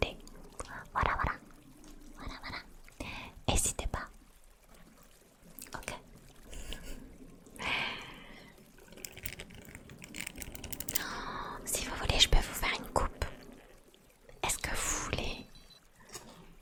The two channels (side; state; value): both; identical; correlation 1.00